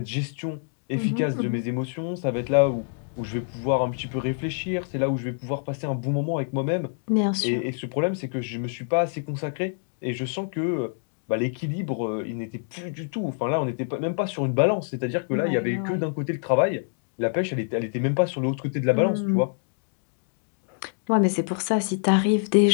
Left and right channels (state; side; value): silent; right; digital silence